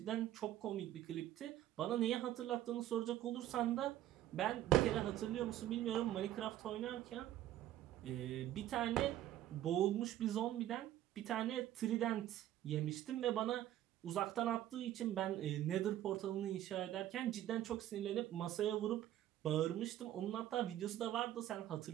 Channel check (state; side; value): quieter; left; 13.0 dB